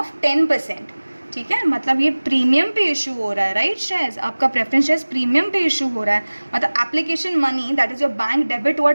10%। ठीक है, मतलब ये प्रीमियम पे इशू हो रहा है, राइट? शेयर्स आपका प्रेफरेंस शेयर्स प्रीमियम पे इशू हो रहा है, मतलब application money that is your bank debit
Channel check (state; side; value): inverted; both; correlation -1.00